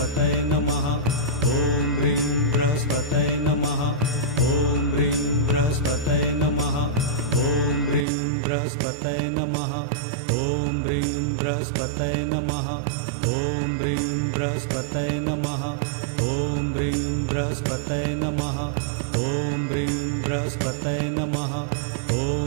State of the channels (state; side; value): drops out; left; at 8.1 s